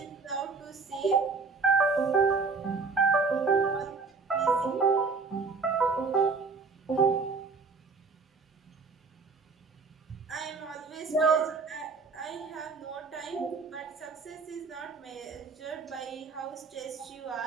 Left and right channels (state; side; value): quieter; left; 4.5 dB